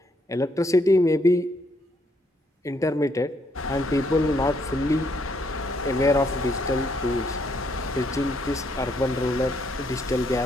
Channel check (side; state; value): both; normal; correlation 0.72